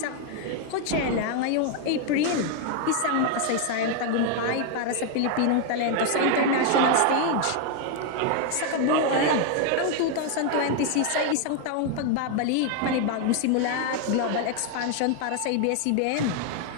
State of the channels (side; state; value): both; different; correlation 0.00